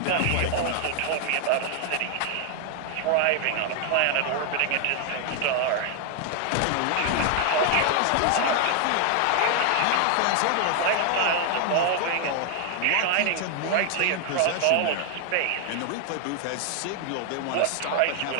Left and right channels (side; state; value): both; different; correlation 0.00